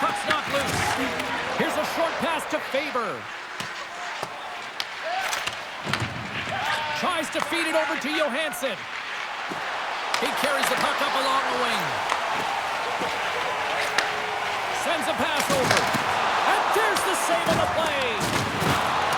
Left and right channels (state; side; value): identical; both; correlation 1.00